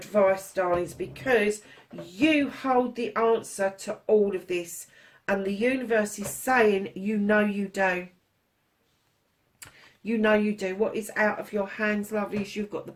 darlings, because you hold the answer to all of this. And the universe is saying, you know you do. You know you do. What is out of your hands, lovelies? You've got the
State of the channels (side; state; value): both; identical; correlation 1.00